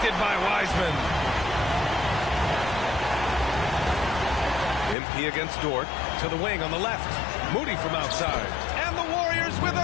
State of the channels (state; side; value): drops out; right; at 5.0 s